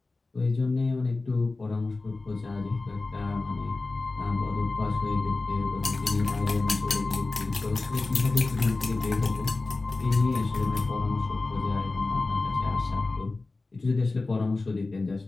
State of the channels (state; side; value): quieter; right; 3.4 dB